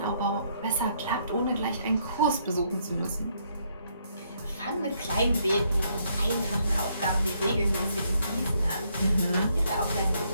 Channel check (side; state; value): both; inverted; correlation -0.72